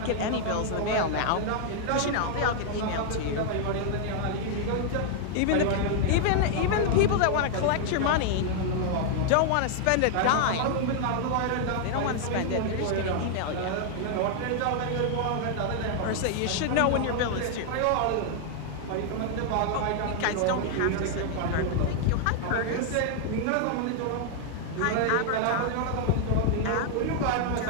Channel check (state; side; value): different; both; correlation 0.00